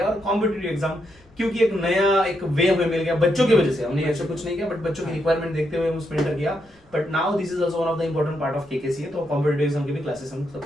और कॉम्पिटिटिव एग्जाम क्योंकि एक नया एक वे हमें मिल गया बच्चों की वजह से। हमने ऐसा कुछ नहीं किया, बट बच्चों की रिक्वायरमेंट देखते हुए हम उसमें एंटर किया। But now this is also one of the important part of KKCA, तो कॉम्पिटिटिव एग्जाम की भी क्लासेस हम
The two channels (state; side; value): noise; left; rumble, 29 dB below the sound